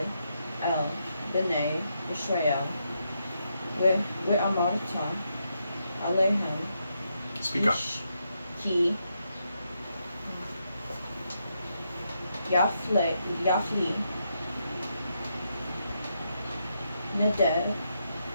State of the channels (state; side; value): inverted; both; correlation -0.81